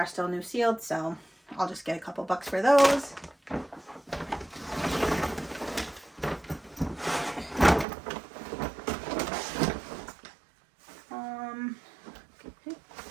still new sealed, so I'll just get a couple bucks for those.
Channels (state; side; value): drops out; left; at 7.9 s